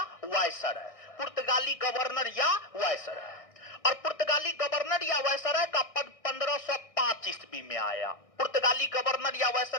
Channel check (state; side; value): late; right; 1.6 ms